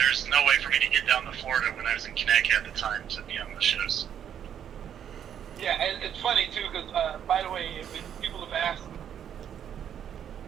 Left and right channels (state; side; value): quieter; left; 9.2 dB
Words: no way for me to get down to Florida when I was in Connecticut at the time to be on the shows. Yeah, and it's funny, too, because, by the way, if people have asked